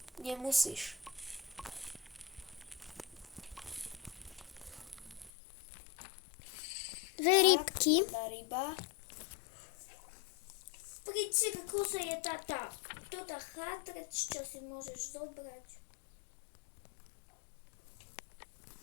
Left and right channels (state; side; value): drops out; right; at 5.3 s